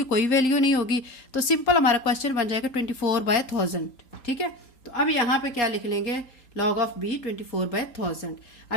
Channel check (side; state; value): right; late; 3.8 ms